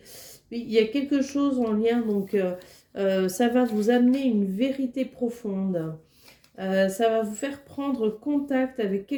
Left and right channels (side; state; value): both; identical; correlation 1.00